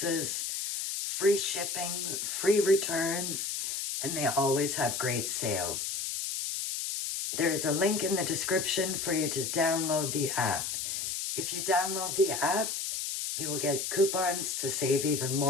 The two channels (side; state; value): left; noise; hiss, 2 dB below the sound